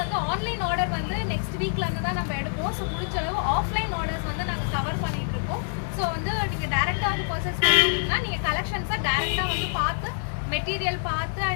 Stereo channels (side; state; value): right; silent; digital silence